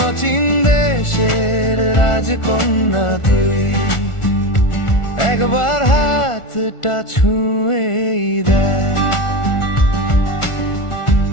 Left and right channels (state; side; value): late; right; 1.4 ms